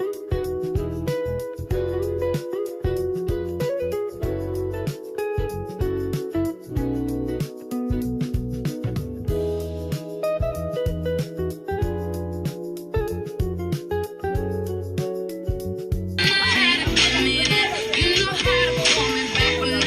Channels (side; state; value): both; identical; correlation 1.00